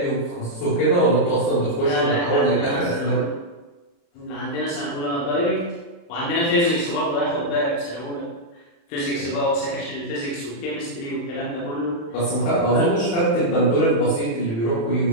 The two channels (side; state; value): right; late; 35 ms